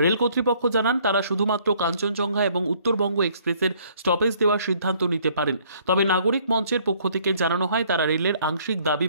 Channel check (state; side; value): inverted; both; correlation -0.62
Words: রেল কর্তৃপক্ষ জানান তারা শুধুমাত্র কাঞ্চনজঙ্ঘা এবং উত্তরবঙ্গ এক্সপ্রেসের স্টপেজ দেওয়ার সিদ্ধান্ত নিতে পারেন। তবে নাগরিক মঞ্চের পক্ষ থেকে জানানো হয় তারা রেলের আংশিক দাবি